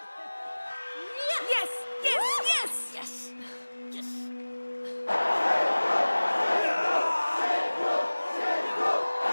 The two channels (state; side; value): inverted; both; correlation -1.00